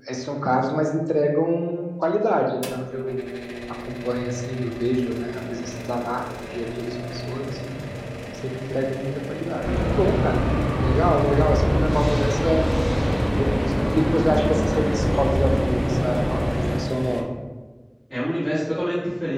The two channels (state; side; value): identical; both; correlation 1.00